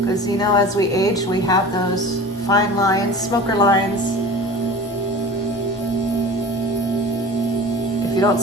you know, as we age, we have those fine lines, smoker lines. If you don't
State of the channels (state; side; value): normal; both; correlation 0.38